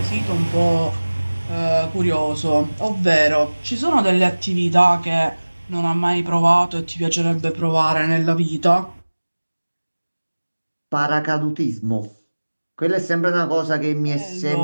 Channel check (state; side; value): inverted; both; correlation -1.00